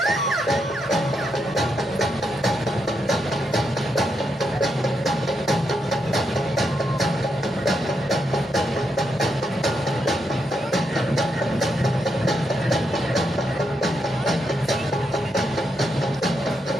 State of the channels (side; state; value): both; normal; correlation 0.81